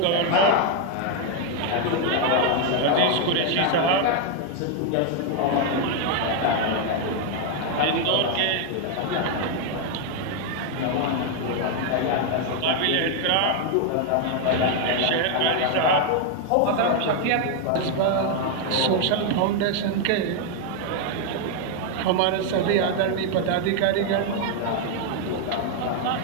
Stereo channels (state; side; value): different; both; correlation 0.01